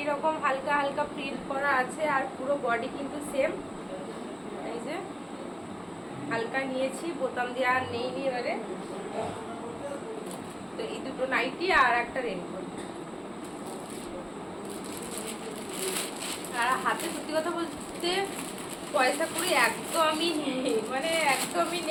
হালকা হালকা প্রিন্ট করা আছে, আর পুরো বডি কিন্তু সেম। এই যে হালকা নিয়েছি, বোতাম দেওয়া আর নেই এবারে। তো এই দুটো নাইটি আর একটা রেনকোট। আর হাতে সত্যি কথা বলতে পয়সা করি একদমই নেই, মানে একদমই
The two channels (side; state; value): both; identical; correlation 1.00